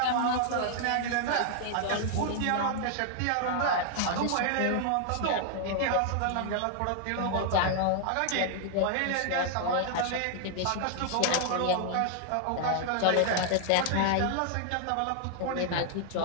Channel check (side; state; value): both; different; correlation 0.00